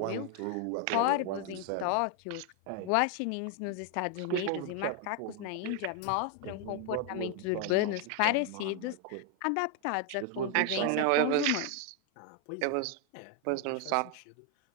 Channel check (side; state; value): both; different; correlation 0.01